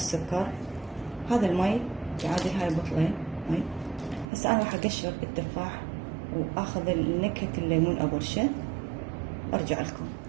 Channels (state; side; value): drops out; left; at 4.2 s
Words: هذا المي يعادل هاي بطلين مي. هسه انا راح اقشر التفاح واخذ نكهه الليمون ابرشه. ارجع لكم.